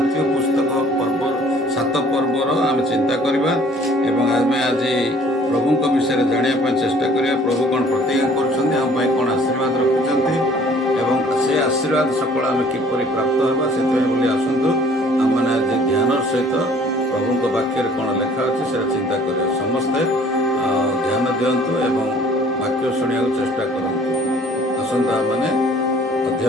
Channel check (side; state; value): both; normal; correlation 0.55